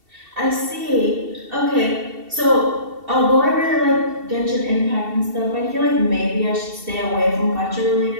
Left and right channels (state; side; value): late; left; 2.7 ms